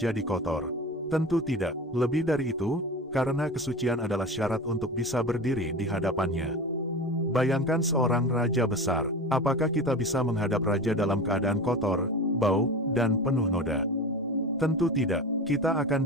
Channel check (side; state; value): both; normal; correlation 0.30